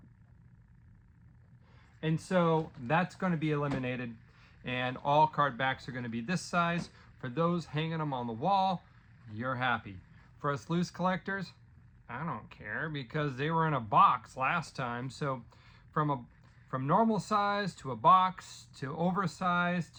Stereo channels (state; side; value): identical; both; correlation 1.00